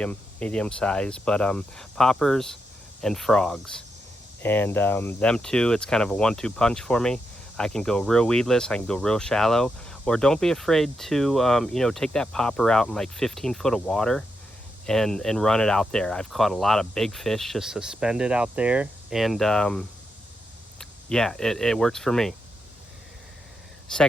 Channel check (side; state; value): both; normal; correlation 0.84